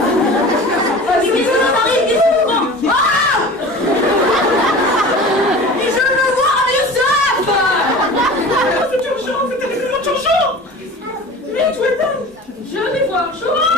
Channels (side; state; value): both; normal; correlation 0.38